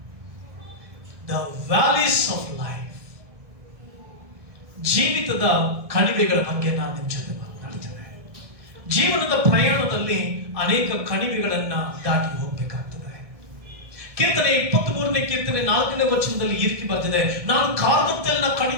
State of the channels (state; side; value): late; left; 1.6 ms